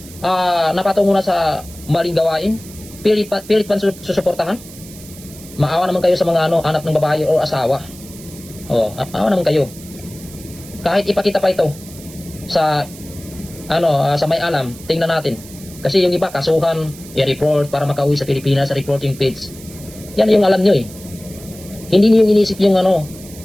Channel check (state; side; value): noise; right; hiss, 18 dB below the sound